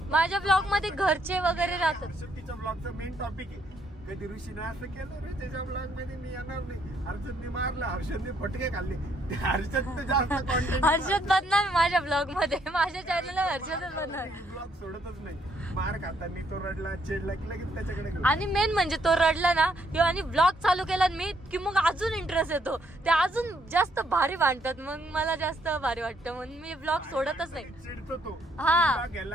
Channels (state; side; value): normal; both; correlation 0.71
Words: माझ्या ब्लॉग मध्ये घरचे वगैरे राहतात. तिच्या ब्लॉगचा मेन टॉपिक आहे कधी ऋषीने असं केलं रे त्याच्या ब्लॉग मध्ये मी येणार नाही, हर्षदने मारलं, हर्षदने फटके खाल्ले. हर्षद जास्त कॉन्टेंट, हर्षद बनणार माझ्या ब्लॉग मध्ये, माझ्या चॅनलला हर्षदच बनणार. ब्लॉग सोडतच नाही. मार खाताना तो रडला, चिडला की लगेच त्याच्याकडे. आणि मेन म्हणजे तो रडला ना किंवा आणि ब्लॉग चालू केला मी की मग अजून इंटरेस्ट येतो, ते अजून जास्त भारी वाटतात. मग मला जास्त भारी वाटतं म्हणून मी ब्लॉग सोडतच नाही. चिडतो तो, हा